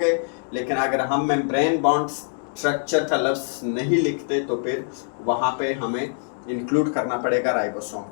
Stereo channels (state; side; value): silent; right; digital silence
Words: लेकिन अगर हम मेम्ब्रेन बॉन्ड स्ट्रक्चर का लफ्ज़ नहीं लिखते तो फिर वहाँ पे हमें इंक्लूड करना पड़ेगा राइबोसोम